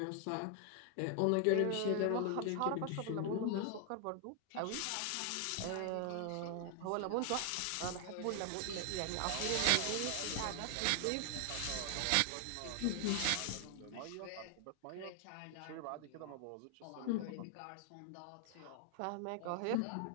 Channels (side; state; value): both; different; correlation 0.00